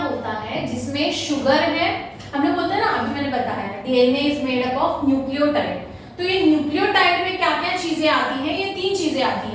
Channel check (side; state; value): both; identical; correlation 1.00